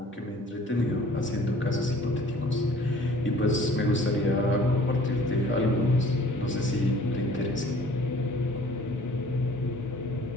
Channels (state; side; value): normal; both; correlation 0.52